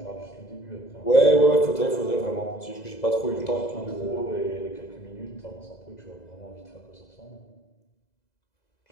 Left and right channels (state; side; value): late; right; 2.0 ms